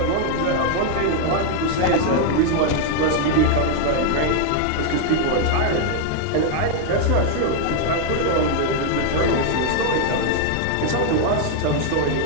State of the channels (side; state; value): both; different; correlation 0.00